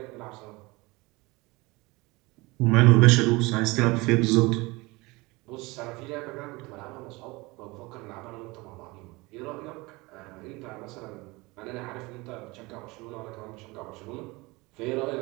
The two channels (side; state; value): left; quieter; 23.5 dB